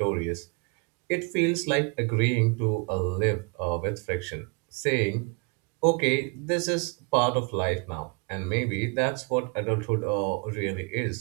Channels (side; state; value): left; quieter; 33.4 dB